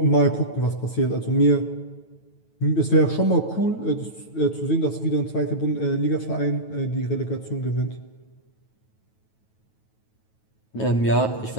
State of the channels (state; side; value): late; right; 9.2 ms